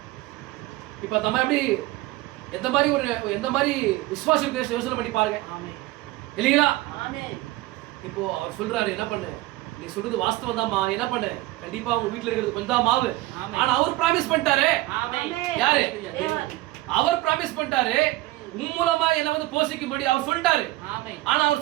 இப்ப நம்ம எப்படி எந்த மாதிரி விசுவாசம் இருக்கு யோசனை பண்ணி பாருங்க. இல்லைங்களா? இப்போ அவர் சொல்றாரு, என்ன பண்ணு, நீ சொல்றது வாஸ்தவம் தான்மா, என்ன பண்ணு, கண்டிப்பா உங்க வீட்டுல இருக்கிறது கொஞ்சம் தான் மாவு. ஆனா அவர் பிராமிஸ் பண்ணிட்டாரு. யாரு? அவர் பிராமிஸ் பண்ணிட்டாரு, உன் மூலமா என்ன வந்து போஷிக்கும்படி அவர் சொல்லிட்டாரு. ஆனா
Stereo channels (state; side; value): quieter; left; 18.3 dB